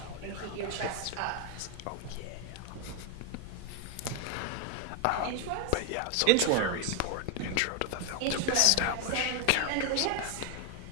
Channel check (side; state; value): both; different; correlation 0.01